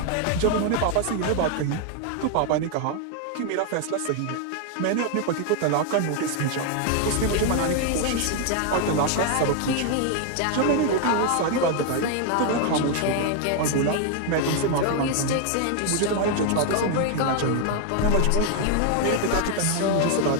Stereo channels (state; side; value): different; both; correlation 0.00